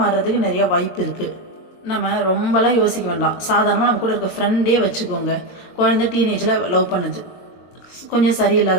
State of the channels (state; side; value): late; right; 22 ms